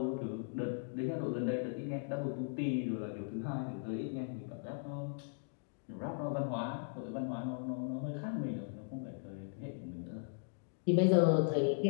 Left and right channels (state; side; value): silent; right; digital silence